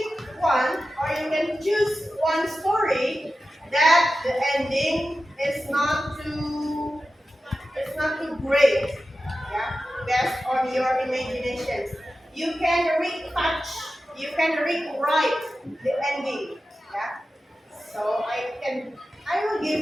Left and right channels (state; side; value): normal; both; correlation 0.93